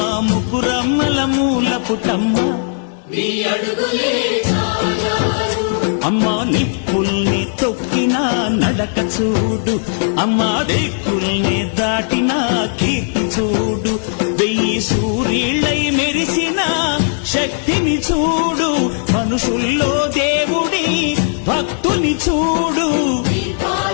ముగ్గురమ్మల మూల పుటమ్మ అమ్మా నిప్పుల్ని తొక్కిన నడక చూడు, అమ్మా దిక్కుల్ని దాటిన కీర్తి చూడు, 1000 సూర్యుళ్ళై మెరిసిన శక్తిని చూడు, మనుషుల్లో దేవుడి భక్తుని చూడు.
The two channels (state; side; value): silent; right; digital silence